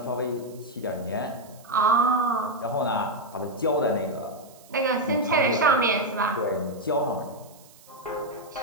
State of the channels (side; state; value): right; noise; hiss, 25 dB below the sound